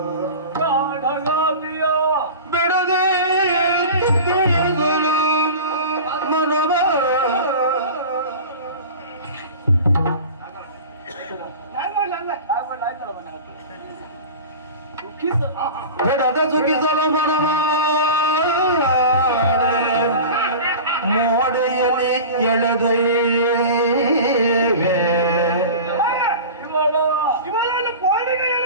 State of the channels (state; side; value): inverted; both; correlation -0.34